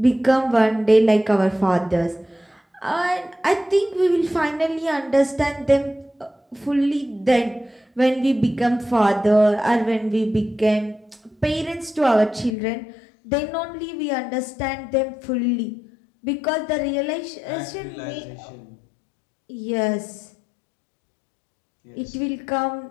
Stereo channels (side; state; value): right; drops out; at 12.5 s